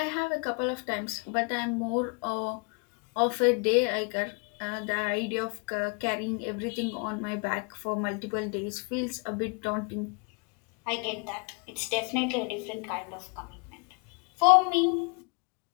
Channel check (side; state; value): right; quieter; 34.3 dB